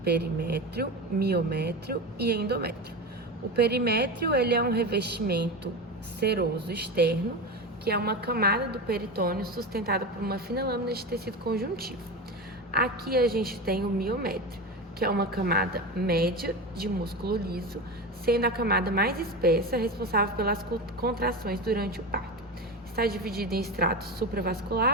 perimétrio, miométrio e endométrio. O perimétrio ele é um revestimento seroso externo, que é uma camada do peritônio sustentada por uma fina lâmina de tecido conjuntivo. Aqui a gente tem o miométrio, que é uma camada média de músculo liso, sendo a camada mais espessa responsável pelas contrações durante o parto. Está dividido em estratos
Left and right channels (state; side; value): normal; both; correlation 0.23